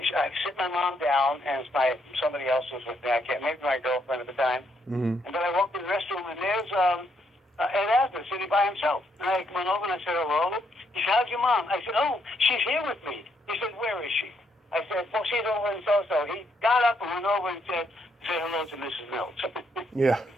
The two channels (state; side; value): normal; both; correlation 0.75